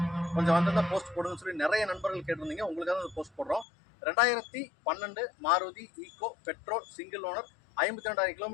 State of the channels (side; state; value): right; drops out; at 3.7 s